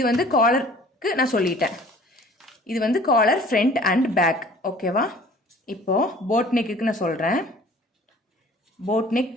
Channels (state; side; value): normal; both; correlation 0.49